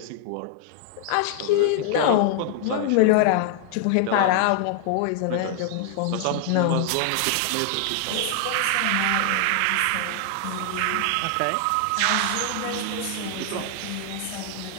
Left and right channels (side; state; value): both; different; correlation 0.00